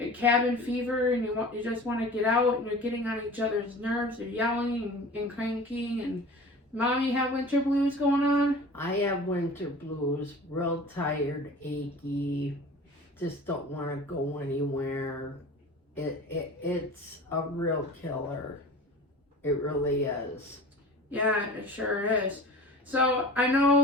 Cabin fever, and you just want to get out, and you're getting on each other's nerves. You're yelling and cranking. And Mom, you have winter blues going on? I have winter blues, real tired, achy, just don't want to go anywhere. It's a real killer. It really is. Yeah, it sure is. So I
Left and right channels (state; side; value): normal; both; correlation 0.39